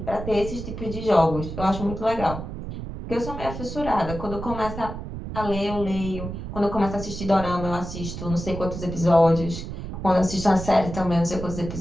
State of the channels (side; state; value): right; noise; rumble, 8 dB below the sound